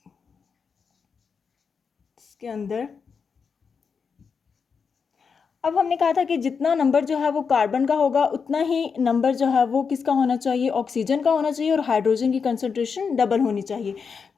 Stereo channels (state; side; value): quieter; right; 5.8 dB